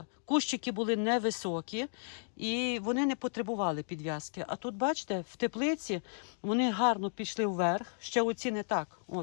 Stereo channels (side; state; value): right; silent; digital silence